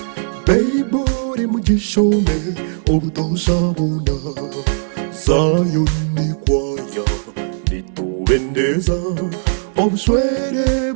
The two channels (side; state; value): left; silent; digital silence